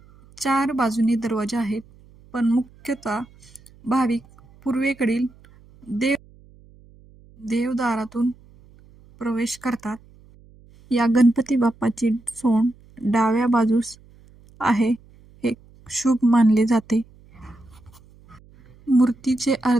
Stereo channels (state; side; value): noise; right; hum, 26 dB below the sound